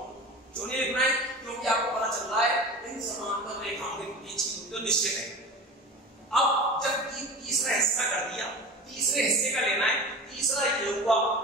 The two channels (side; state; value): both; normal; correlation 0.33